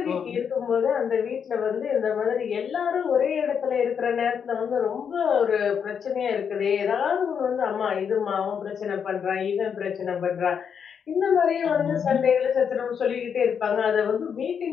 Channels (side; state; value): right; quieter; 7.2 dB